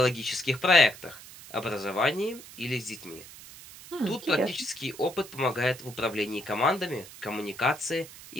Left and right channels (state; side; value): noise; right; hiss, 17 dB below the sound